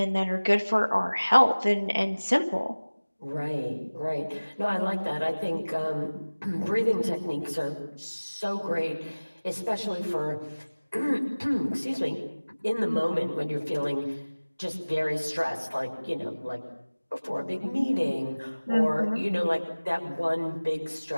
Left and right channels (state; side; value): inverted; both; correlation -1.00